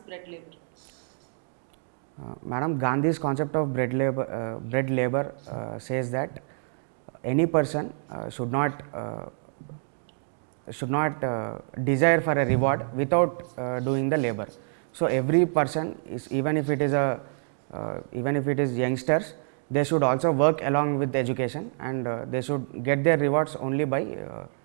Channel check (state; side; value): silent; left; digital silence